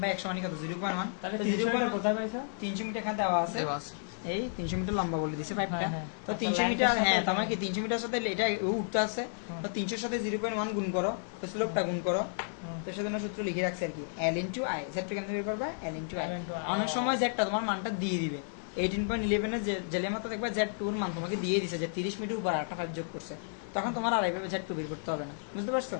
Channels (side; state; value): right; silent; digital silence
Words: মানে কত 0.1, তাহলে তো 300 0.1 কোথায় পাইছো, 300 মিটার এখানে দেওয়া আছে, দেওয়া আছে। এই 300 মিটার লম্বা বলে দিছে পাইপটা, হ্যাঁ, তো আচ্ছা, 300 length মিটার, এর সাথে হ্যাঁ এটা তোমার কি 300 মিটার সাথে এটা উঠতে আছে, তো 300 এর সাথে 0.1 গুণ করো, তো স্লোপটা গুণ করো, তো সেজন্য সূত্র লিখে রাখছে আর কি L into I, Z কেন বের করবে L into I। অনেক সময় Z তোমার মানটা দিয়ে দিবে, 18.11 এর জেলের মতো দেখবে Z2 এর মান তোমাকে দিয়ে দিছে যে 30 মিটার উপর আরেকটা পাইপ যোগ করছে, তখন তোমার আর এইভাবে Z2 বের করতে হবে না, বুঝতে পারছো,